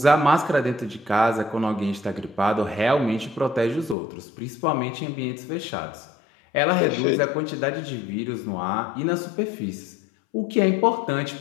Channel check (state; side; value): drops out; right; at 4.0 s